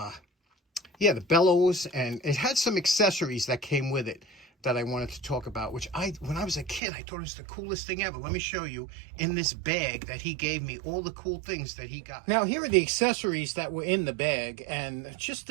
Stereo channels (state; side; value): drops out; left; at 6.8 s